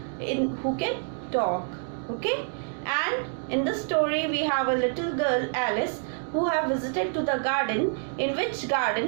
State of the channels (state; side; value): silent; left; 60 dB below the other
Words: who can talk. Okay? And in this story, we have a little girl, Alice, who have visited to the garden, in which